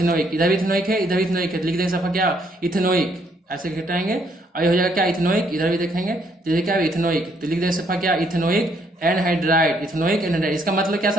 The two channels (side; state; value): both; normal; correlation 0.69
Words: इधर भी इथेनोइक है, इधर भी इथेनोइक है, लिख देंगे सफा क्या इथेनोइक, ऐसे घटाएंगे और ये हो जाएगा क्या इथेनोइक, इधर भी देखेंगे तो ये क्या है इथेनोइक, तो लिख देंगे सफा क्या इथेनोइक एनहाइड्राइड, इथेनोइक एनहाइड्राइड। इसका मतलब क्या